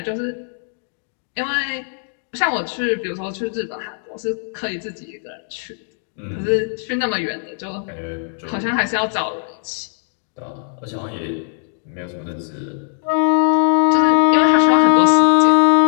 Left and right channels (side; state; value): right; silent; digital silence